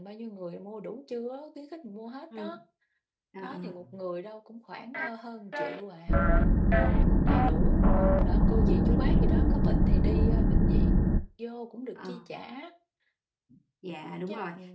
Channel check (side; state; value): both; identical; correlation 1.00